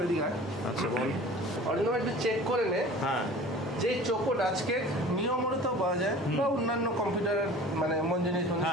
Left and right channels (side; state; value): both; normal; correlation 0.43